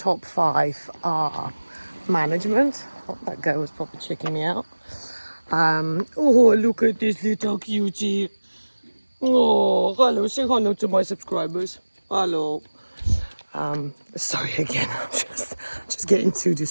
5 are management. Oh, that guy was probably checking me out. Oh, look at this little cutie. Oh, hello, say hello to my subscribers. Hello. Sorry again, I'm just getting too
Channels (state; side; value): inverted; both; correlation -1.00